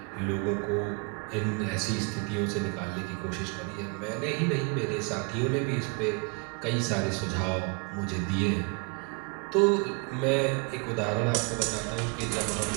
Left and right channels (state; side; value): quieter; left; 33.3 dB